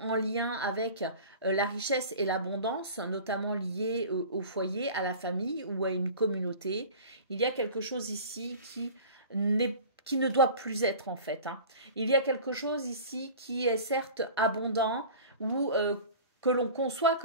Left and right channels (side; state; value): both; inverted; correlation -0.39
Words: lien avec la richesse et l'abondance, notamment liée au foyer, à la famille ou à une communauté. Il y a quelque chose ici qui ne doit plus être en fait. Hein. Il y a quelque chose ici qui est certes abondant ou que l'on conçoit